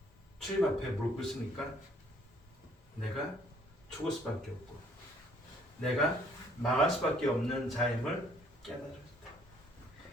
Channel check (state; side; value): normal; both; correlation 0.62